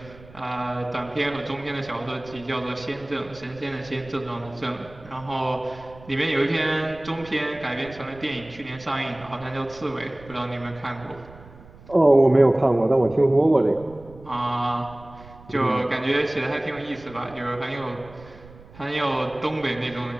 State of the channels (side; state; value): right; noise; rumble, 20 dB below the sound